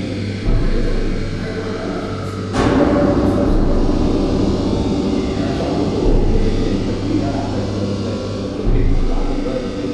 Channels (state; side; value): identical; both; correlation 1.00